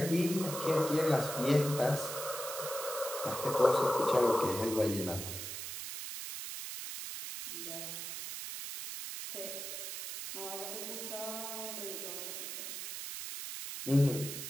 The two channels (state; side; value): noise; right; hiss, 6 dB below the sound